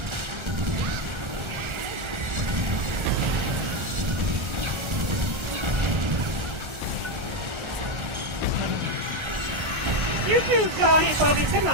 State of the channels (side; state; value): left; late; 1.4 ms